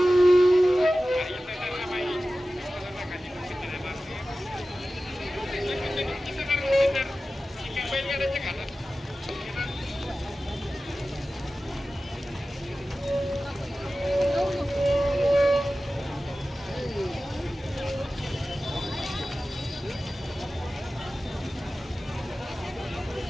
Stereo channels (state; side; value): normal; both; correlation 0.95